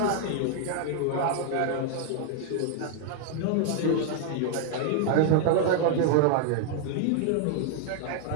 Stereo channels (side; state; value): both; different; correlation 0.00